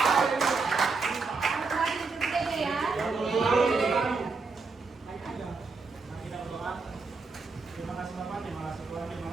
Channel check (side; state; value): left; quieter; 4.3 dB